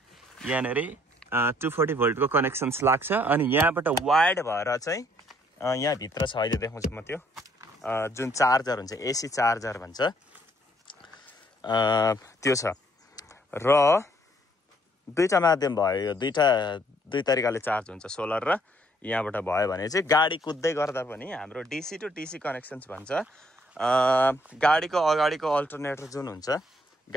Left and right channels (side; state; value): both; normal; correlation 0.66